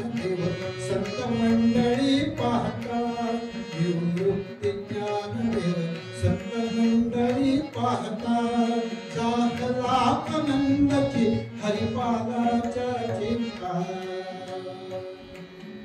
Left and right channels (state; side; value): identical; both; correlation 1.00